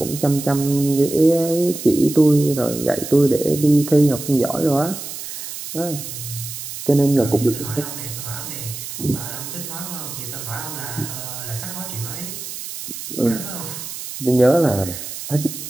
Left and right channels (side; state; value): right; noise; hiss, 9 dB below the sound